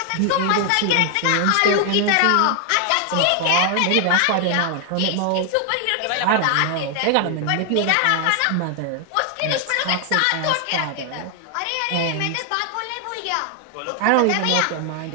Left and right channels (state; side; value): different; both; correlation 0.00